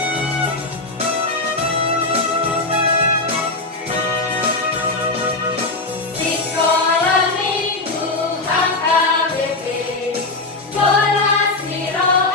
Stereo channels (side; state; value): right; quieter; 3.2 dB